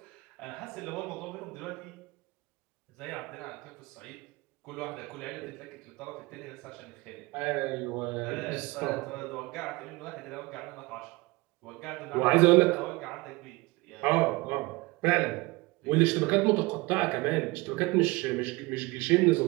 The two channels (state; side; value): quieter; left; 23.6 dB